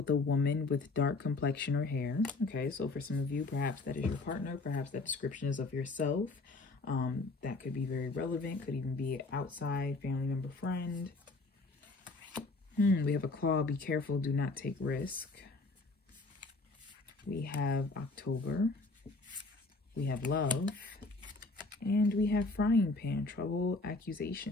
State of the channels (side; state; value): right; quieter; 3.4 dB